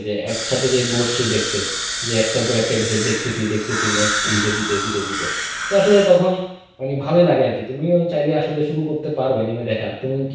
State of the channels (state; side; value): identical; both; correlation 1.00